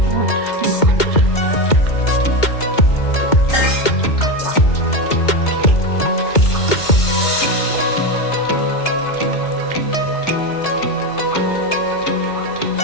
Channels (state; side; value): late; right; 2.2 ms